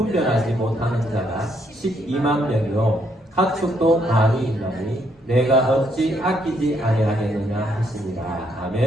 못하는 자가 12만 명이요 가축도 많이 있나니 내가 어찌 아끼지 아니하겠느냐 하시니라.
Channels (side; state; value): both; normal; correlation 0.73